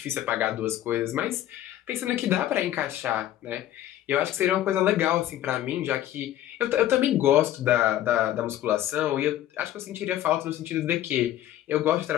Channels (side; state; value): right; quieter; 12.8 dB